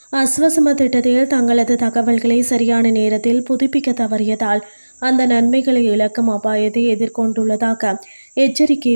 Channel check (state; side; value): inverted; both; correlation -1.00